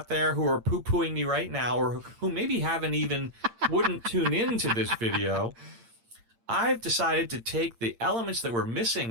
there who are poo-pooing me right now, or who maybe wouldn't tune into this video, I've decided to take the elements that were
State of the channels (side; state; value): left; late; 8.7 ms